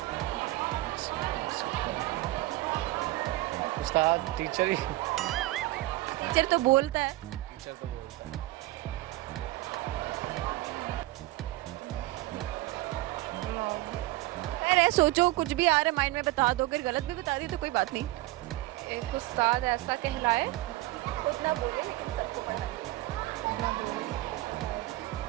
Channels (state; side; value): quieter; left; 18.3 dB